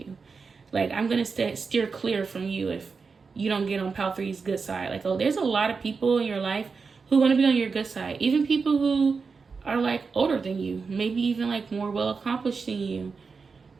Like, I'm gonna steer clear from you if you don't get on Pal 3's good side. Like, oh, there's a lot of people in your life who want to be on your good side. Even people who are like older than you, maybe even like more well accomplished than you.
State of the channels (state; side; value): quieter; left; 4.9 dB